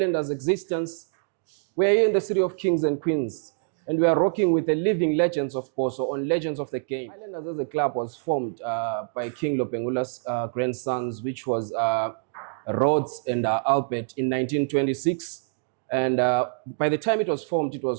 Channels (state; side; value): silent; left; digital silence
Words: existence, we are here in the city of Kings and Queens, and we are rocking with the living legends of Bosso on Legends of the Game. Highlanders as a club was formed by King Lopengula's grandsons, which was Rhodes and Albert in 1926. And by the time it was formed, it